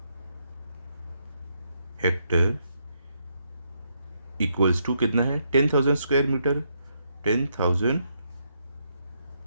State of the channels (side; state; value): both; inverted; correlation -0.77